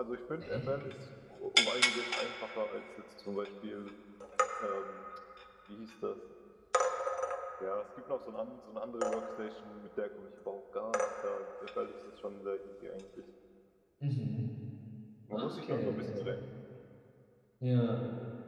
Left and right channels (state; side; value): identical; both; correlation 1.00